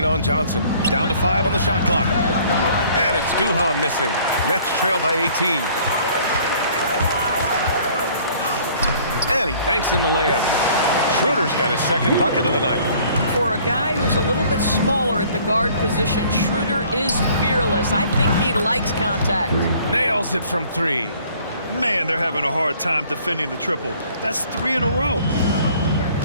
on Johnson. Down to 5 on the shot clock. And it's Duhan missing. Nets trail by 18. And he banks in the layup. Schroeder's got his second bucket of the night. For a guy who's a little bit smaller at the guard position, Schroeder is fearless. I think he likes contact. Nails it from 3. Man, they're having a hard time defending the triple. That's 3 in a row.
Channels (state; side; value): inverted; both; correlation -0.56